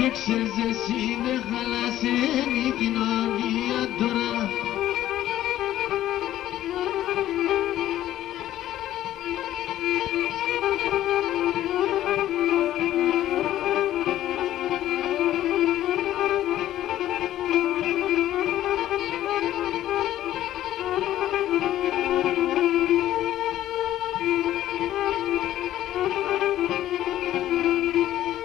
ξέρεις εσύ δεν χαλάσεν η κοινωνία τώρα.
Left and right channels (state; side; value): quieter; right; 13.1 dB